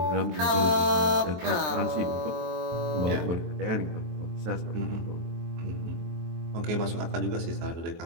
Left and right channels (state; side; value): late; left; 23 ms